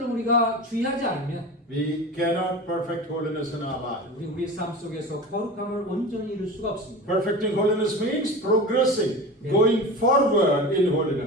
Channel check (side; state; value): both; normal; correlation 0.31